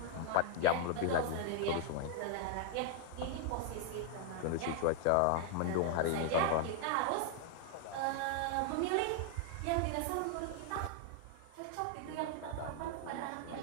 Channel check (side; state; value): both; different; correlation 0.00